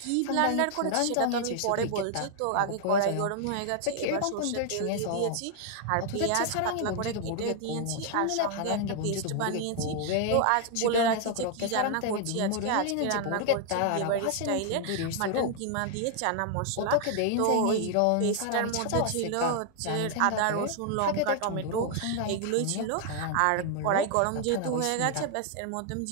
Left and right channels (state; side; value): different; both; correlation 0.00